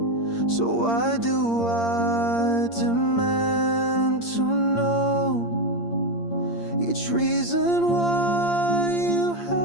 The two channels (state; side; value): late; right; 8.7 ms